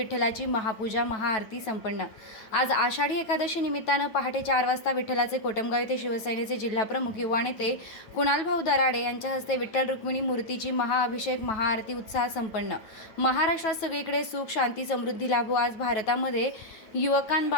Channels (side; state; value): right; late; 9.2 ms